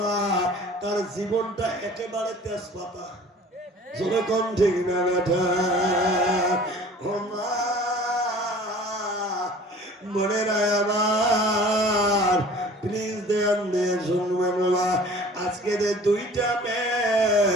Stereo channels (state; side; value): normal; both; correlation 0.46